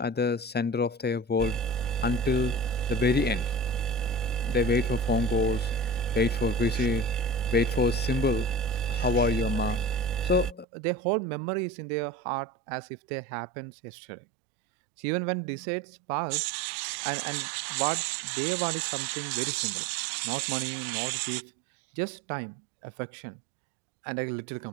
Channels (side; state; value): left; drops out; at 10.7 s